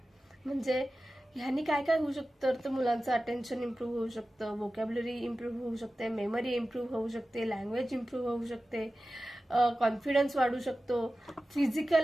म्हणजे ह्यानी काय काय होऊ शकतं तर मुलांचं अटेन्शन इम्प्रूव्ह होऊ शकतं, व्होकॅब्युलरी इम्प्रूव्ह होऊ शकते, मेमरी इम्प्रूव्ह होऊ शकते, लँग्वेज इम्प्रूव्ह होऊ शकते, कॉन्फिडन्स वाढू शकतो,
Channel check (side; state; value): both; normal; correlation 0.95